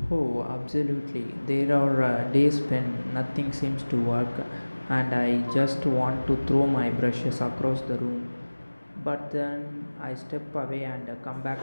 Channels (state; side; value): inverted; both; correlation -1.00